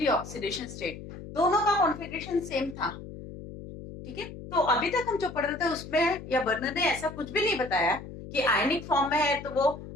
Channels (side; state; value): left; noise; hum, 13 dB below the sound